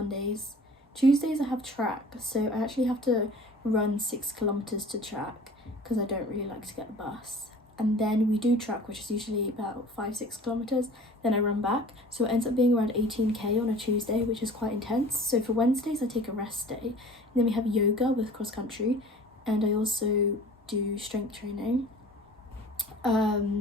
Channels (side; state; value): both; normal; correlation 0.45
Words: Tuesdays I have track, so I actually have to run 6 kilometers to track because I don't really like to get the bus. And then we do track, which is usually about 5-6 kilometers. Then I run back, so it ends up being around 18k on a Tuesday, which is quite intense. So for Wednesdays I take a rest day, and then we have yoga with cross country, and I also do strength training.